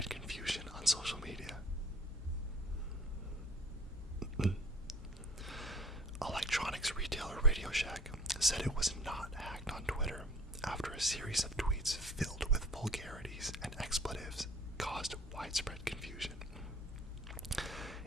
confusion on social media. Electronics retailer RadioShack said it was not hacked on Twitter, after a series of tweets filled with vulgarities and expletives caused widespread confusion.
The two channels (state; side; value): normal; both; correlation 0.49